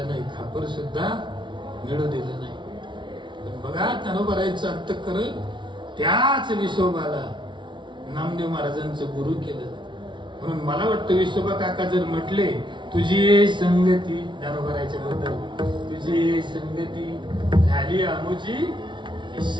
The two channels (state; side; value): late; left; 0.23 ms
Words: नाही. खापर सुद्धा मिळू दिलं नाही. पण बघा ज्ञानोबारायांचं अंतःकरण त्याच विसोबाला नामदेव महाराजांचं गुरु केलं. म्हणून मला वाटतं विसोबा काका जर म्हटले तुझी संगती ज्ञानोबारायांच्या बद्दल, तुझी संगती झाली आमोची